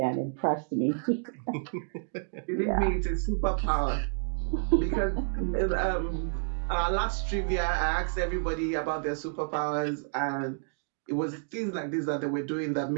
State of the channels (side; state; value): left; silent; digital silence